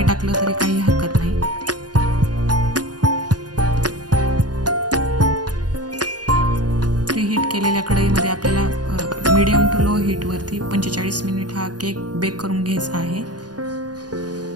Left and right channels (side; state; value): left; late; 0.69 ms